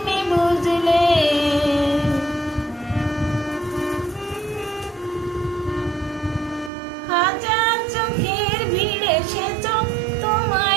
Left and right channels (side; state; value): left; drops out; at 6.7 s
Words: বুঝলে। হাজার চোখের ভিড়ে সে চোখ